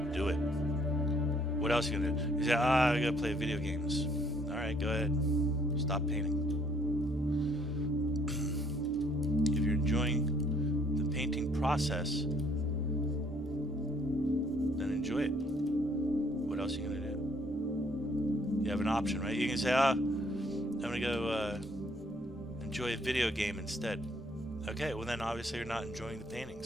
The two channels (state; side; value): normal; both; correlation 0.64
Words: do it. What else are you gonna do? You say, I gotta play video games. Alright, go ahead. Stop painting. If you're enjoying the painting process, then enjoy it. What else are you gonna do? You have an option, right? You can say, I'm gonna go enjoy a video game instead. Okay, well then obviously you're not enjoying the painting,